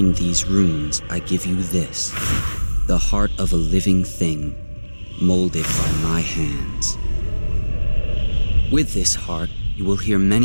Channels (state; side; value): inverted; both; correlation -1.00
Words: these runes, I give you this, the heart of a living thing, molded by my hands. With this heart, you will hear